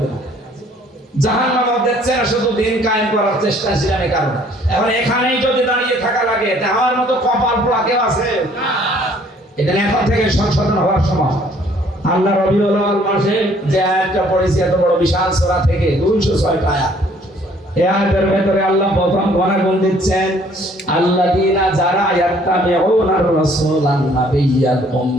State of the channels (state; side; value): normal; both; correlation 0.60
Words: না, জাহান্নামও দিচ্ছে না, শুধু দিন কায়েম করার চেষ্টা ছিলাম এই কারণে। এখন এখানেই যদি দাঁড়িয়ে থাকা লাগে, তা আমার মতো কপাল পোড়া কেউ আছে? এখানে এখন থেকে সংশোধন হওয়ার সময়। আল্লাহ রবিউল আউয়াল মাসে যে আয়াতটা পড়েছি, এত বড় বিশাল সূরা থেকে 206টা আয়াত, এই আয়াতের ভেতরে আল্লাহ প্রথম গুণাগুণ দিচ্ছেন, আল্লাযীনা যারা ইয়াত্তাবিউনার রাসূলান নাবিয়্যাল